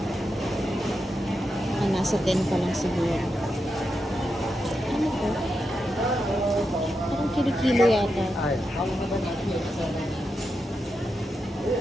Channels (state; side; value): normal; both; correlation 0.86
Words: Nasa 10 pa lang siguro. Ano to? Parang kilo-kilo yata.